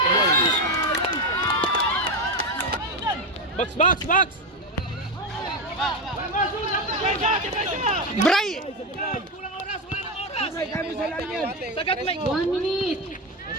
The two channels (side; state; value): both; normal; correlation 0.12